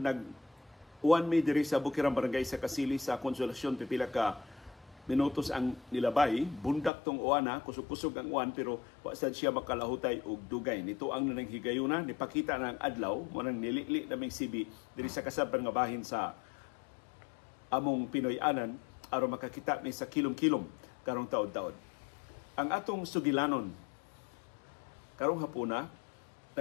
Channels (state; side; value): drops out; right; at 6.9 s